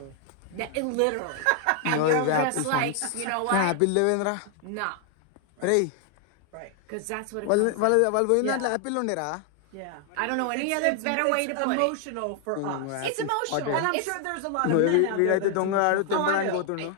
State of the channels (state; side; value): different; both; correlation 0.00